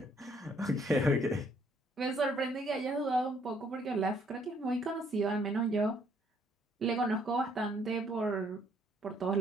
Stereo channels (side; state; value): both; normal; correlation 0.66